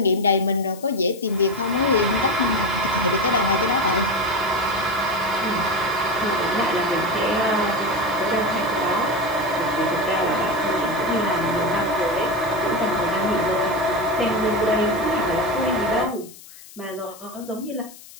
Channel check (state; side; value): noise; left; hiss, 19 dB below the sound